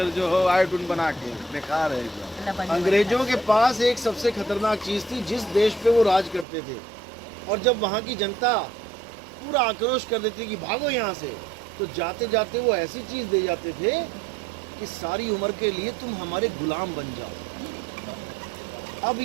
जो हो आयोडीन बना के, बेकार है। अंग्रेजों के पास एक सबसे खतरनाक चीज थी, जिस देश पे वो राज करते थे, और जब वहाँ की जनता पूरा आक्रोश कर देती कि भागो यहाँ से, तो जाते जाते वो ऐसी चीज दे जाते थे कि सारी उम्र के लिए तुम हमारे गुलाम बन जाओ। अब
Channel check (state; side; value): drops out; left; at 6.5 s